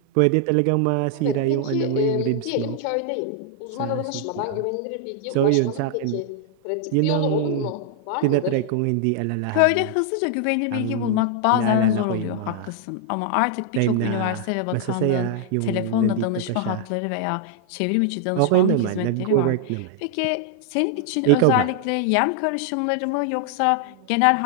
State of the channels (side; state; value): both; different; correlation 0.00